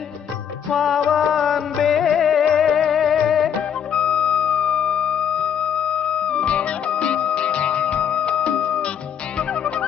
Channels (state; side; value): quieter; right; 8.5 dB